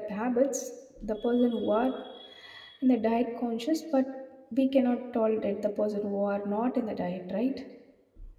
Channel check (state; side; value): identical; both; correlation 1.00